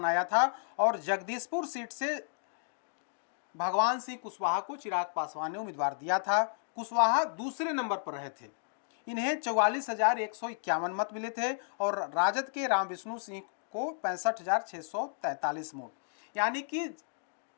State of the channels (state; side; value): silent; right; digital silence